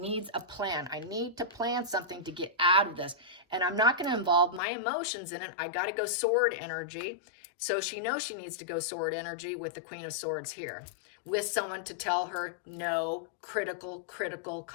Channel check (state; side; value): drops out; right; at 4.6 s